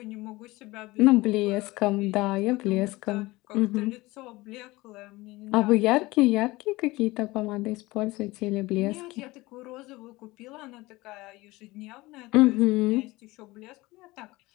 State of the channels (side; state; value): right; quieter; 20.6 dB